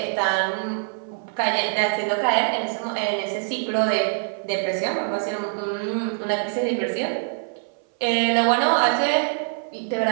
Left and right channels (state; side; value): silent; left; 58 dB below the other